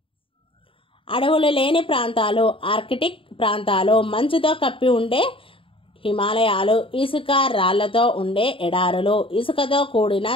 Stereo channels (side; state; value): right; late; 0.26 ms